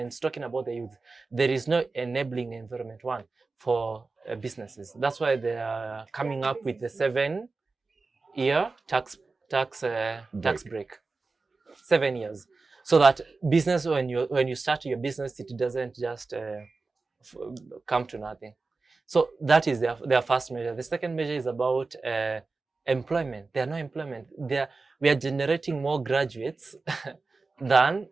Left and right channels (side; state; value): left; quieter; 3.9 dB